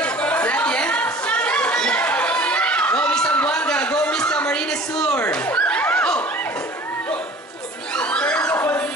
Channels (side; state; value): both; normal; correlation 0.45